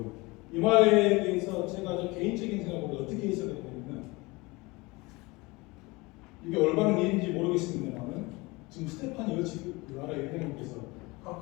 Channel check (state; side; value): quieter; right; 23.9 dB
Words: 이 말에 대해서 제가 개인적인 생각으로 어떻게 해석을 했냐면, 이게 올바른 일인지 모르겠습니다만 지금 스테파니 여치 RI 회장님께서